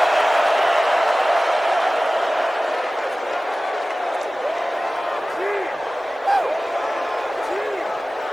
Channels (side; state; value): both; normal; correlation 0.97